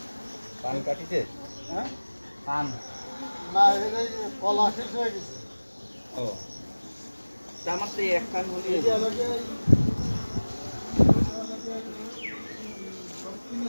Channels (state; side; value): inverted; both; correlation -1.00